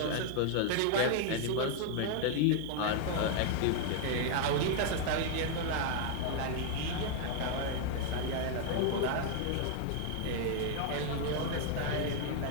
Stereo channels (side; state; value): both; different; correlation 0.00